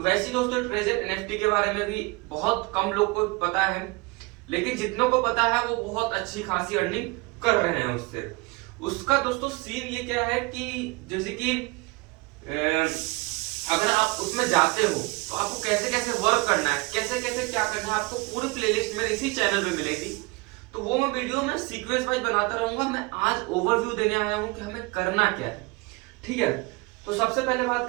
दोस्तों, ट्रेजर एनएफटी के बारे में भी बहुत कम लोग को पता है, लेकिन जितनों को पता है वो बहुत अच्छी खासी अर्निंग कर रहे हैं उससे। उसका दोस्तों सीन ये क्या है कि जैसे कि अगर आप उसमें जाते हो तो आपको कैसे कैसे वर्क करना है, कैसे कैसे क्या करना है, आपको पूरी प्लेलिस्ट मेरे इसी चैनल पे मिलेगी। तो वो मैं वीडियो में सीक्वेंस वाइज बनाता रहूंगा। मैं आज ओवरव्यू देने आया हूं कि हमें करना क्या है। ठीक है, तो सबसे पहले बात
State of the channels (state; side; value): quieter; left; 25.5 dB